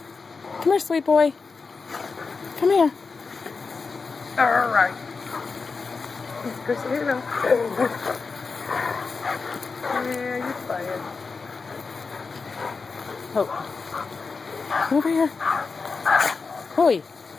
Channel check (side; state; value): right; quieter; 4.6 dB